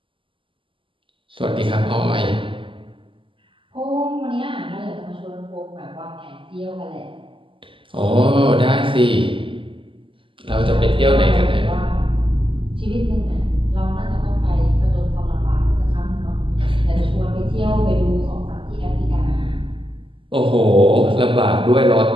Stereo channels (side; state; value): left; late; 0.25 ms